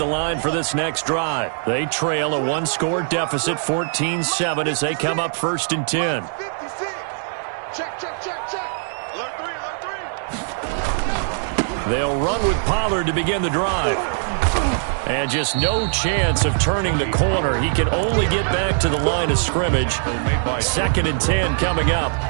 line for this next drive. They trail a one-score deficit, 14-7, as they come up 1st and 10. They'll run with Pollard to begin the drive. And just no chance of turning the corner. He can only get back to the line of scrimmage. 2nd and 10 coming up.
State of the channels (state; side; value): silent; left; digital silence